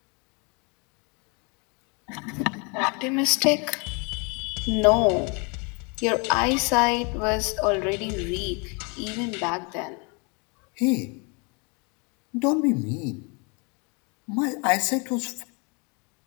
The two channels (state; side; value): quieter; right; 32.8 dB